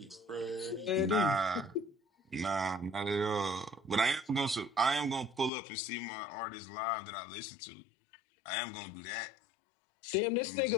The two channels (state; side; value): drops out; right; at 5.5 s